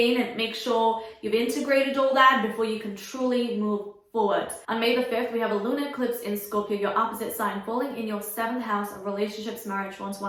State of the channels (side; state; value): both; identical; correlation 1.00